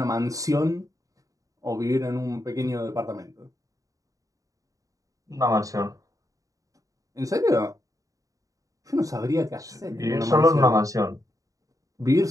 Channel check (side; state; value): left; late; 0.16 ms